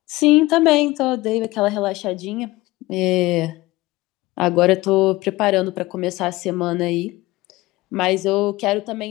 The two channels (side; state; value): right; quieter; 19.6 dB